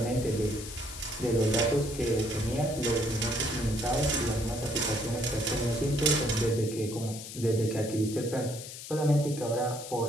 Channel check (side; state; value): left; noise; hiss, 11 dB below the sound